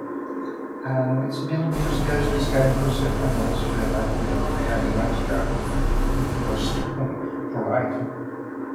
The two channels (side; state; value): both; identical; correlation 1.00